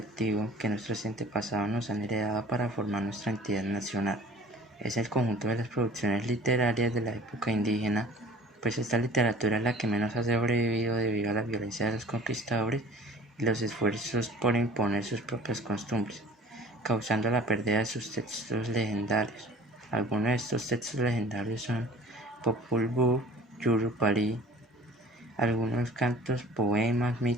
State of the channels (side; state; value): both; normal; correlation 0.47